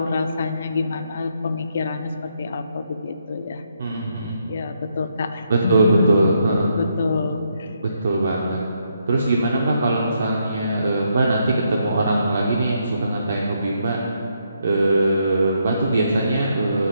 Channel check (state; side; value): inverted; both; correlation -0.77